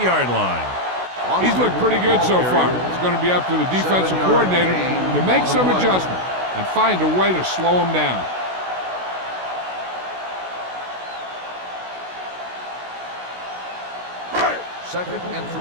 line. He's looked pretty good so far. It's going to be up to the defensive coordinator to make some adjustment and find a way to slow him down. Second and 3.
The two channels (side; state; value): left; late; 16 ms